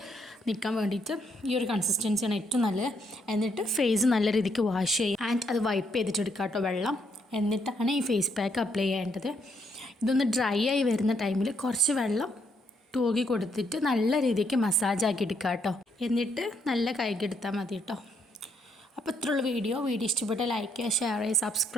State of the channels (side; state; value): both; normal; correlation 0.73